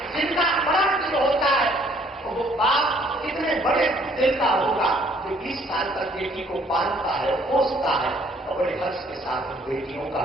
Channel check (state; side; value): normal; both; correlation 0.62